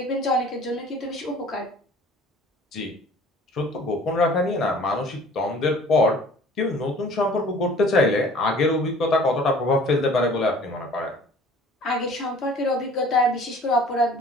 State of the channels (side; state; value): both; normal; correlation 0.49